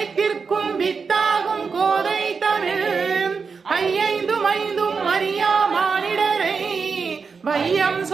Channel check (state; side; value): quieter; left; 5.3 dB